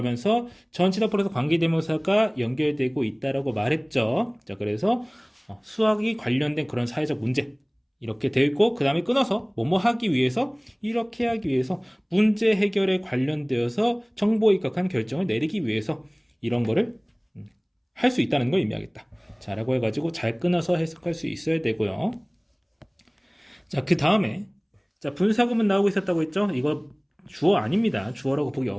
전치사 플러스 관계대명사가 연결되고 있다라고 말했죠. 자, 그래서 수학이 관련된 그런 사회적 문제 이렇게 되어 있고 그 다음에 끊어서 뭐뭐 하기 위해서 이렇게 하기 위해서 문제 해결에 관련되어서 정보에 입각한 결정을 내리기 위해서 이런 거를 할 수 있다는 걸 의미하겠다. 자, 라고 해가지고 잘 끊어서 해석할 수 있어야 되고요. 자, 그 다음에 자, 분사구문 나오고 있었다고 했죠? 이거 주어 아닙니다. 주어라고 보기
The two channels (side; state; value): both; identical; correlation 1.00